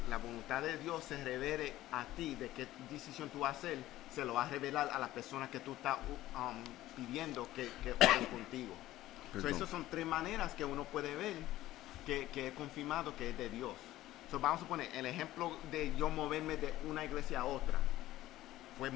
la voluntad de Dios se revele a ti de qué decisión tú vas a hacer, se lo va a revelar a las personas que tú estás pidiendo que oren contigo. So, esas son 3 maneras que uno puede ver que es confirmado que es de Dios. So, vamos a poner el ejemplo de yo moverme de una iglesia a otra. Fue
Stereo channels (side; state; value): right; quieter; 15.3 dB